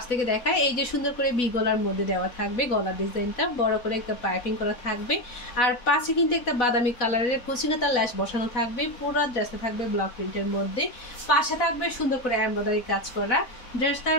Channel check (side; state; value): right; late; 4.1 ms